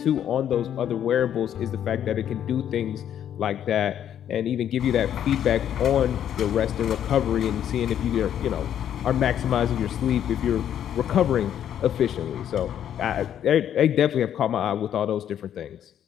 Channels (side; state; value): right; quieter; 10.0 dB